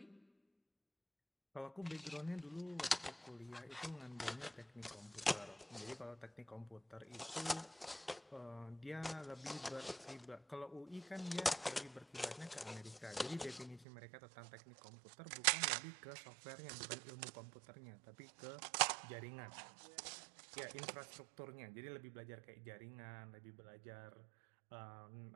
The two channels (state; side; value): drops out; left; at 13.9 s